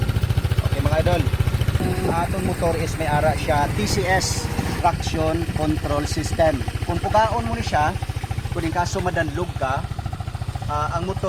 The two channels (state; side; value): identical; both; correlation 1.00